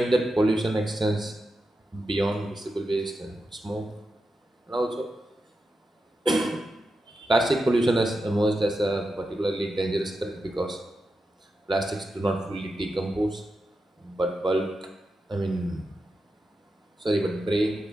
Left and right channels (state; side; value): normal; both; correlation 0.89